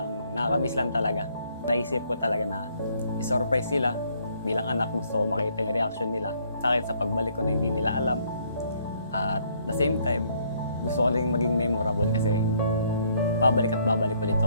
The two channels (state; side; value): inverted; both; correlation -0.66